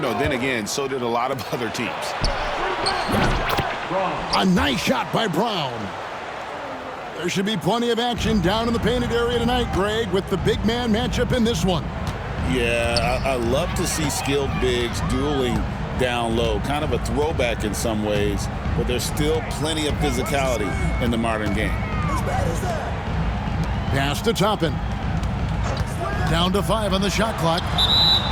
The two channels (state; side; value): identical; both; correlation 1.00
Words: again, so did a lot of other teams. A nice shot by Brown. There should be plenty of action down in the painted area tonight, Greg, with the big man matchup in this one. Yeah, I love to see skilled bigs dueling down low. Kind of a throwback in some ways, but there's still plenty of physicality in the modern game. Pass to Toppin. Down to 5 on the shot clock.